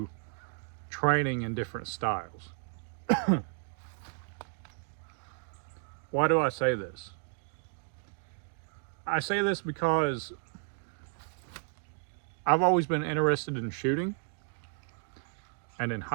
training in different styles. Why do I say this? I say this because I've always been interested in shooting. And in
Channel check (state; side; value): silent; left; 56 dB below the other